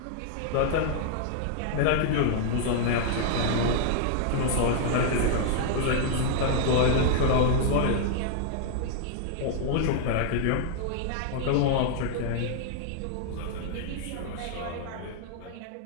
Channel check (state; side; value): different; both; correlation -0.01